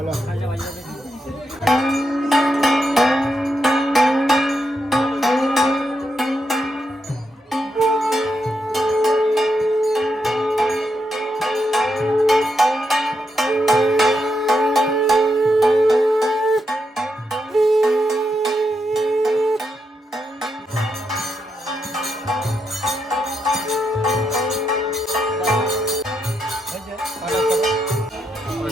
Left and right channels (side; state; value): both; normal; correlation 0.82